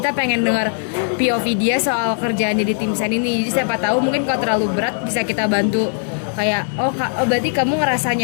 pengen dengar POV dia soal kerjaannya di tim sen ini. Jadi siapa tahu mungkin kalau terlalu berat bisa kita bantu, kayak oh berarti kamu ngerasa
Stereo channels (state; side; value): silent; right; digital silence